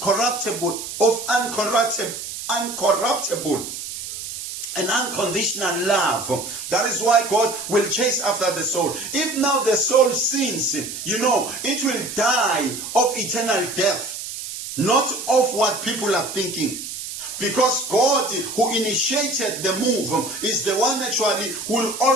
and unconditional love. That is why God will chase after the soul. If now the soul sins, it will die of eternal death. Not of what people are thinking. Because God, who initiated the move, is the one actually who will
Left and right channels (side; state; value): right; noise; hiss, 8 dB below the sound